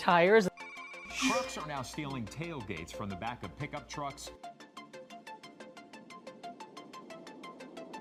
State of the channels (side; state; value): both; identical; correlation 1.00